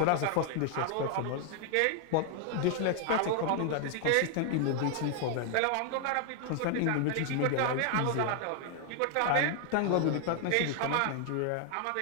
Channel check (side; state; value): both; different; correlation 0.00